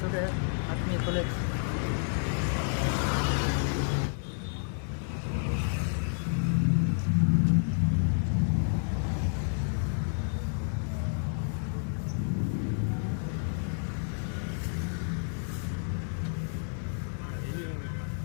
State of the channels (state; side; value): silent; right; 58 dB below the other